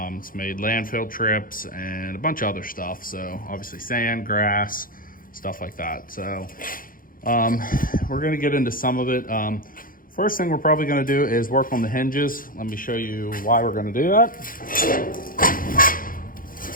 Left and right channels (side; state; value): right; late; 0.40 ms